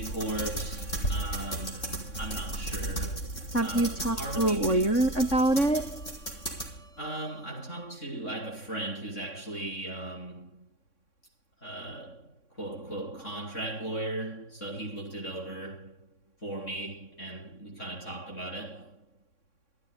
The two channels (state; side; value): late; right; 3.6 ms